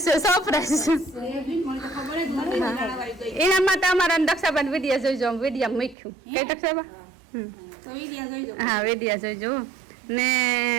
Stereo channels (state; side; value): drops out; left; at 6.0 s